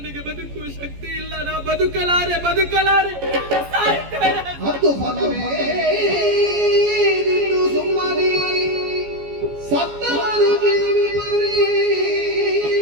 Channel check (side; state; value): left; late; 14 ms